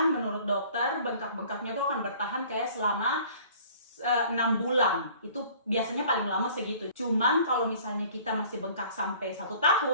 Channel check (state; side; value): inverted; both; correlation -0.51